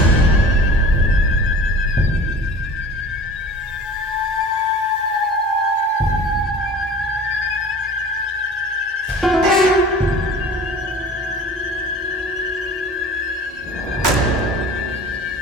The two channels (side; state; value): both; normal; correlation 0.41